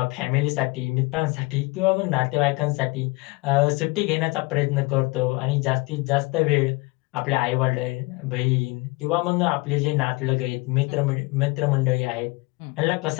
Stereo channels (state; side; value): quieter; right; 25.3 dB